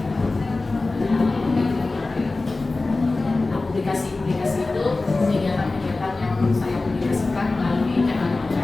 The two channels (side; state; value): right; quieter; 3.4 dB